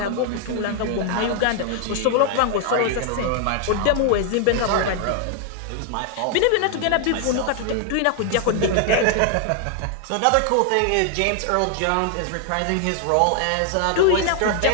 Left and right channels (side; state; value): both; different; correlation 0.00